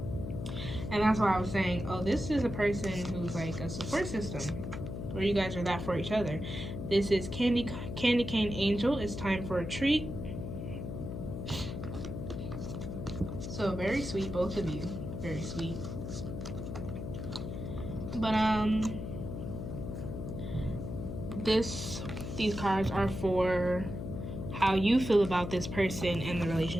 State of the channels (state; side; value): noise; left; hum, 6 dB below the sound